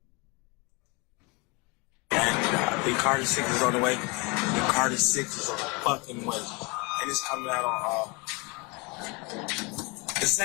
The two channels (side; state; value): right; quieter; 28.8 dB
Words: The Carter 6 is on the way. The Carter 6 is on the fucking way. And it's coming out on the